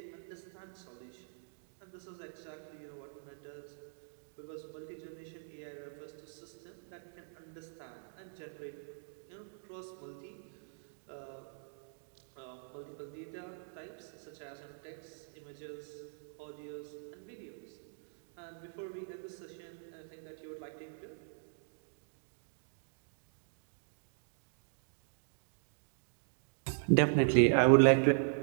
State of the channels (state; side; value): silent; left; digital silence